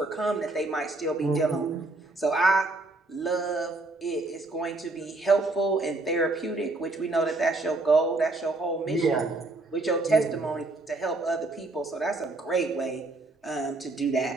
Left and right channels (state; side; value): quieter; left; 3.1 dB